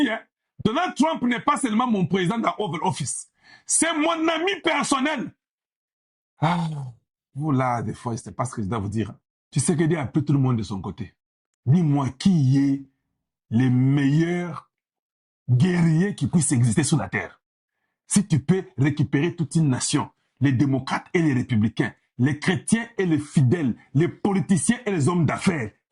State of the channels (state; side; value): identical; both; correlation 1.00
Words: hein, Donald Trump n'est pas seulement mon président dans Oval Office. C'est mon ami personnel. Ah, vous là, des fois, c'est pas ce que je dois vous dire. Tu sais que Dieu a pris tout le monde de son côté. Dis-moi qui est le meilleur guerrier qui puisse exister sur la terre. Si tu peux récupérer toute une nation, les démocrates et les républicains, les chrétiens et les fidèles, les politiciens et les hommes d'affaires